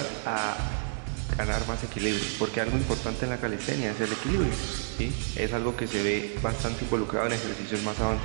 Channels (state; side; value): silent; left; digital silence